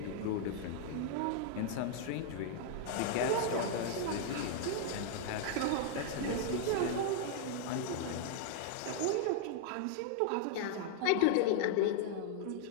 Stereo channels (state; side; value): different; both; correlation 0.00